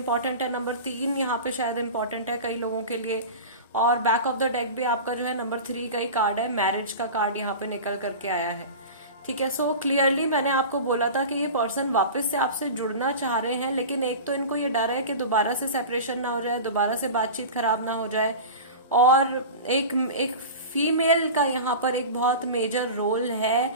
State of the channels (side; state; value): both; inverted; correlation -0.31